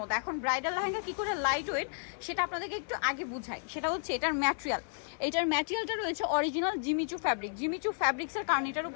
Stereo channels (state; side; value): silent; right; 56 dB below the other